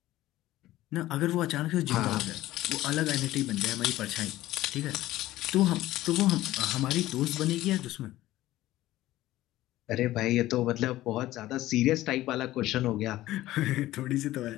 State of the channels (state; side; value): quieter; right; 15.8 dB